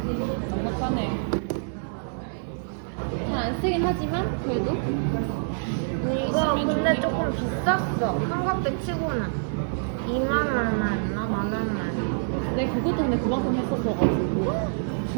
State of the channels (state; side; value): silent; left; digital silence